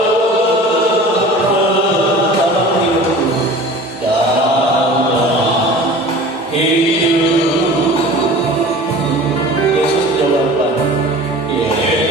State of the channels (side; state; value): both; normal; correlation 0.40